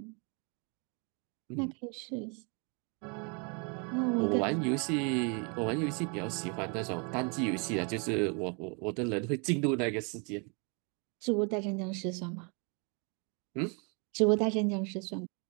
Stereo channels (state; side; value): quieter; left; 35.2 dB